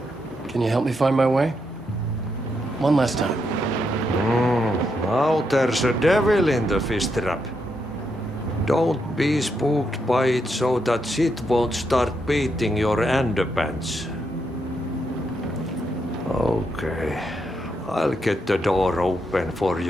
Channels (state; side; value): normal; both; correlation 0.80